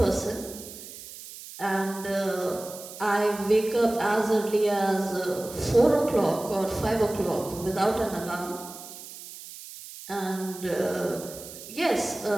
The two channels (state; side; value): noise; right; hiss, 14 dB below the sound